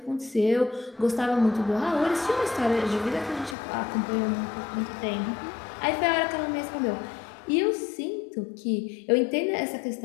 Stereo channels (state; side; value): drops out; right; at 3.6 s